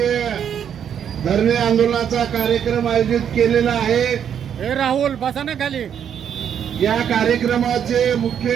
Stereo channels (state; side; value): quieter; left; 8.6 dB